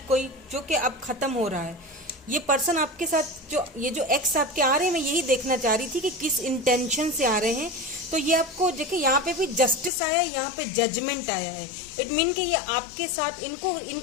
कोई, जो कि अब खत्म हो रहा है। ये पर्सन आपके साथ जो ये जो एक्स आपके आ रहे हैं, मैं यही देखना चाह रही थी कि किस इंटेंशन से आ रहे हैं। तो ये आपको देखिए यहाँ पे भी जस्टिस आया है, यहाँ पे जजमेंट आया है। इट मीन कि ये आपके साथ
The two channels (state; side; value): drops out; right; at 9.9 s